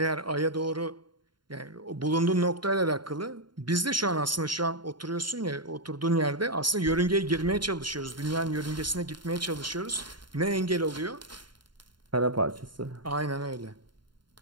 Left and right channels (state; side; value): late; left; 0.72 ms